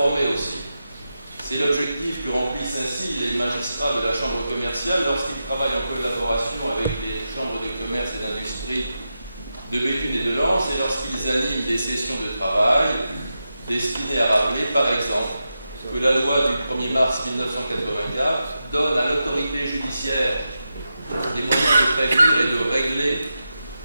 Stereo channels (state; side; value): inverted; both; correlation -0.89